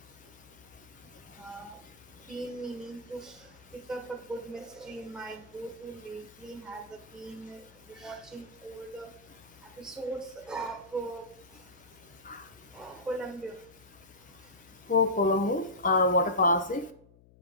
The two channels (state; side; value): noise; left; hum, 24 dB below the sound